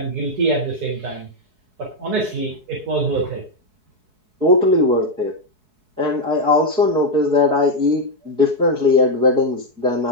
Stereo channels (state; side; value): late; left; 4.7 ms